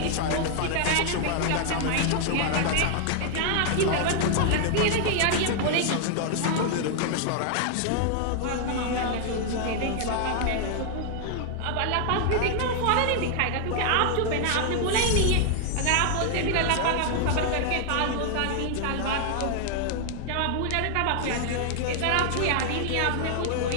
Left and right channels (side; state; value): both; different; correlation 0.00